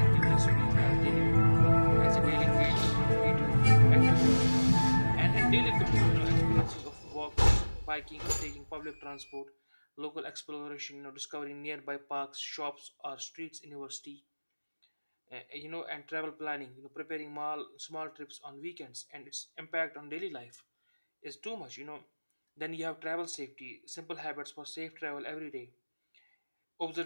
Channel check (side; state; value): both; inverted; correlation -1.00